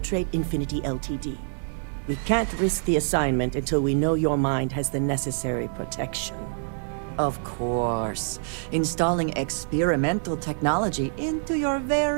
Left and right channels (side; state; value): left; silent; digital silence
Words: Infinity Ltd. We can't risk the assignment until we know your mind has the necessary protection. Of course. Installing experimental technology into your